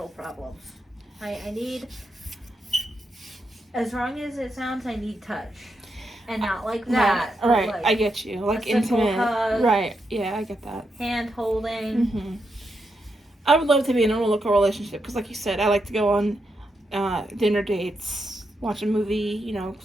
problems. I need, as wrong as it sounds, I need touch. And not like that. Right, like I get you. Like intimate. Hug, right, yeah, I get that. Hand holding. Mm-hmm. I would love to be in a local relationship because, like you said, I like to go on dinner dates, watch a movie,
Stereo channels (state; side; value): normal; both; correlation 0.83